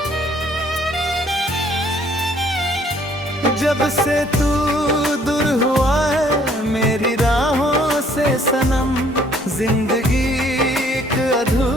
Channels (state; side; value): normal; both; correlation 0.61